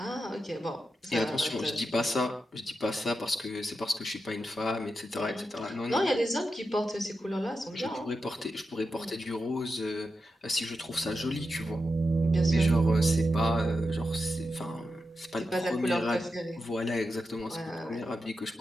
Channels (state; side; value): normal; both; correlation 0.88